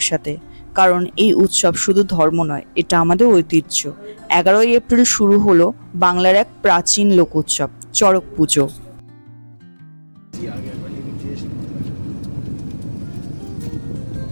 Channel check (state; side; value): inverted; both; correlation -1.00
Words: কারণ এই উৎসব শুধু ধর্ম নয়, এটা আমাদের ঐতিহ্য। 11ই এপ্রিল শুরু হলো বাংলার এক প্রাচীন লোক উৎসব, চড়ক পুজো।